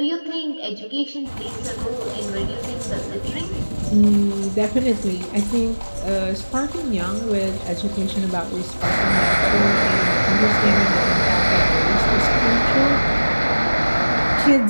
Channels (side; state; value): both; inverted; correlation -1.00